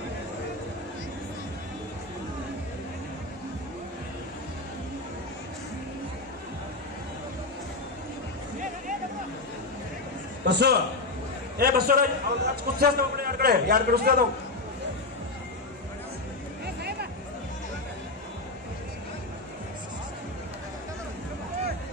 ಬಸ್ಸು ಬಸ್ಸು ಕುಸ್ತಿ ಕಡೆ ಯಾರ ಕಡೆ ಉಸ್ತಾ ಅದಾವ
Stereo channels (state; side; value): quieter; right; 3.1 dB